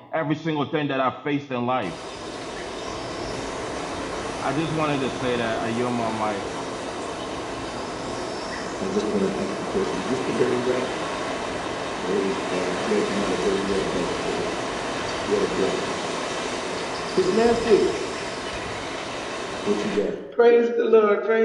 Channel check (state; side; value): identical; both; correlation 1.00